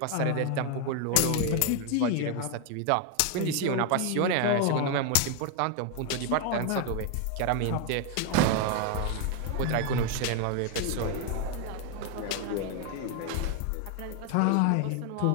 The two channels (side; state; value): both; different; correlation 0.01